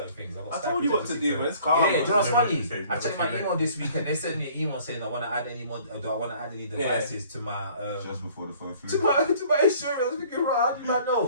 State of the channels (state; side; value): inverted; both; correlation -0.55